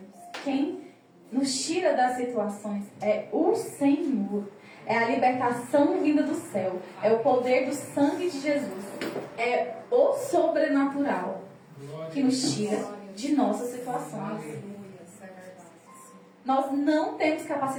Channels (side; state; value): both; identical; correlation 1.00